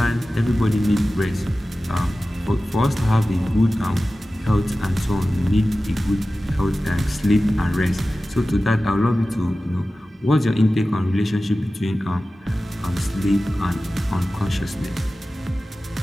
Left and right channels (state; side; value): normal; both; correlation 0.95